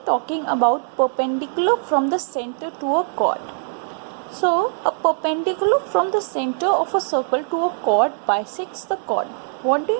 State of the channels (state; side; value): silent; left; digital silence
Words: talking about perpendicular from the center to a chord. So a perpendicular from the center of a circle to a chord bisects the chord. What do